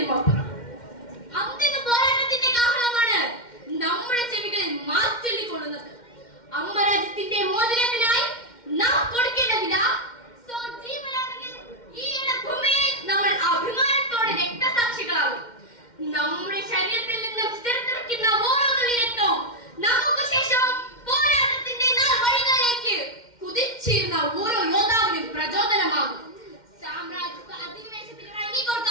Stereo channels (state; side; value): late; right; 2.1 ms